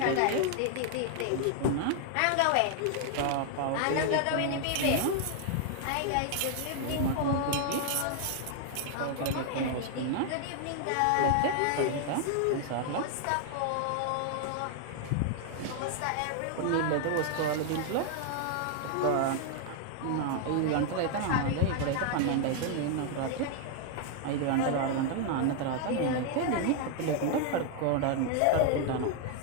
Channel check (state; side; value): different; both; correlation 0.00